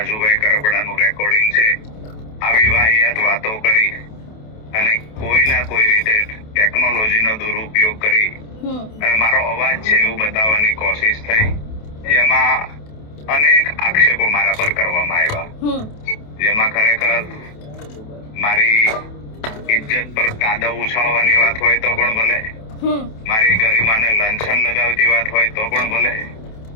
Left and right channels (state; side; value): late; right; 28 ms